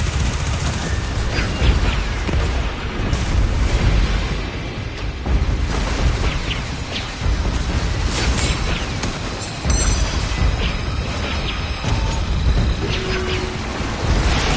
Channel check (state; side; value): identical; both; correlation 1.00